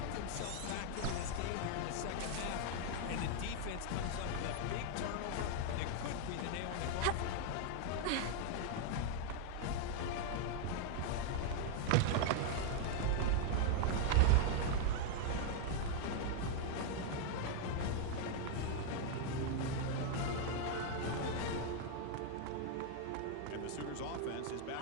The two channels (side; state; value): both; different; correlation 0.00